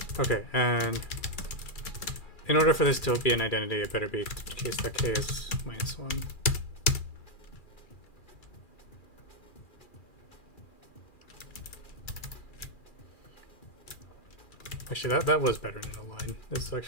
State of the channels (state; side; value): late; right; 2.4 ms